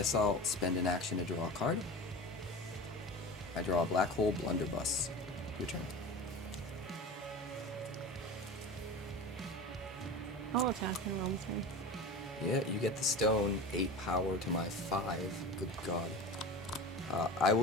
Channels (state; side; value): normal; both; correlation 0.31